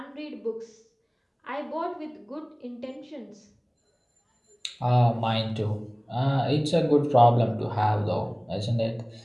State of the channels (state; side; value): identical; both; correlation 1.00